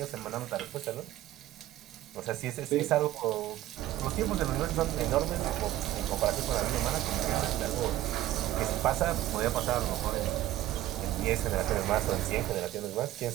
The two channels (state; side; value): quieter; left; 14.4 dB